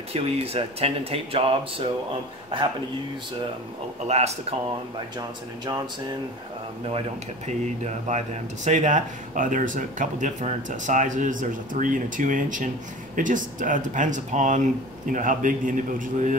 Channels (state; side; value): normal; both; correlation 0.37